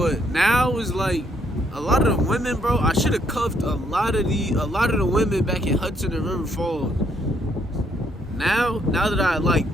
now it's like, a lot of the women, bro, I should have cuffed a lot of the women back in Hudson and River Falls. Now that I like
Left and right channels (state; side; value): normal; both; correlation 0.71